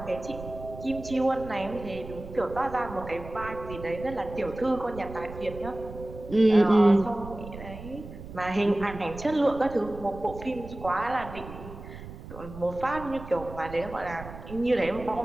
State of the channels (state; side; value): noise; right; rumble, 13 dB below the sound